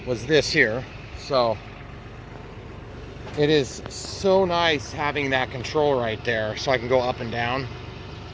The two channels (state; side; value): identical; both; correlation 1.00